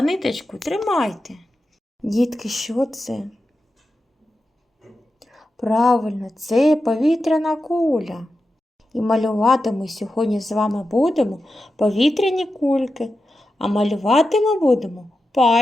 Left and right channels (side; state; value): both; normal; correlation 0.90